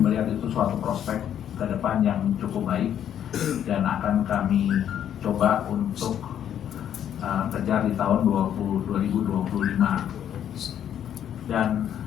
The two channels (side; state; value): right; quieter; 9.9 dB